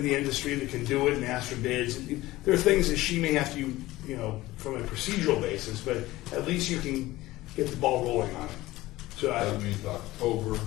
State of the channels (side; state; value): right; quieter; 17.8 dB